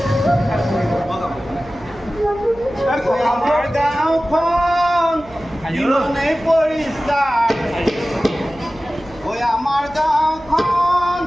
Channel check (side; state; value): right; noise; hum, 23 dB below the sound